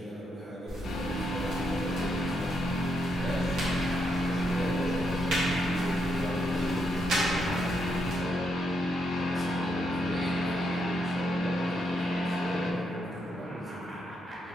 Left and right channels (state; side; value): normal; both; correlation 0.79